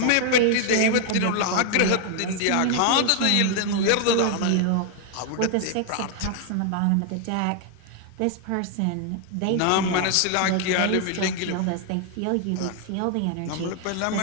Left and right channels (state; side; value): different; both; correlation 0.00